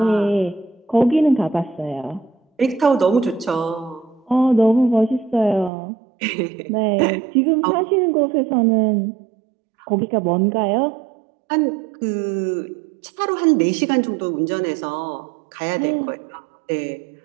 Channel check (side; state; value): left; drops out; at 5.7 s